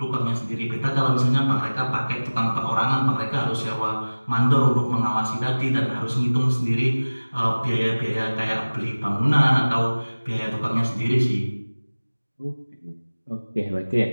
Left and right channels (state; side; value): inverted; both; correlation -1.00